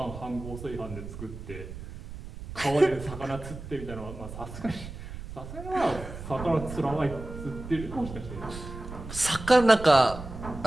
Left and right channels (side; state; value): right; noise; rumble, 11 dB below the sound